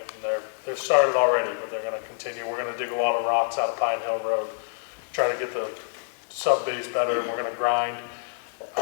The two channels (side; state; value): right; silent; digital silence